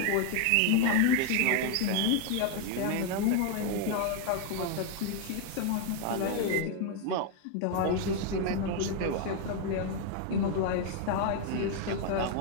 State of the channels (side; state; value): both; different; correlation 0.01